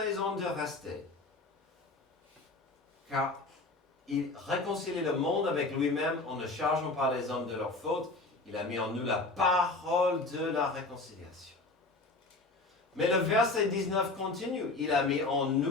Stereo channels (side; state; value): right; quieter; 3.2 dB